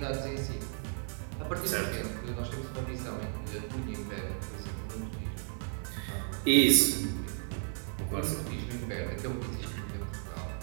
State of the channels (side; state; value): left; silent; 55 dB below the other